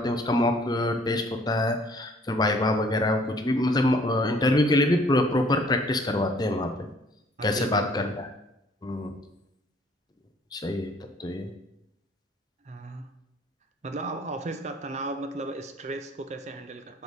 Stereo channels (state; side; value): normal; both; correlation 0.58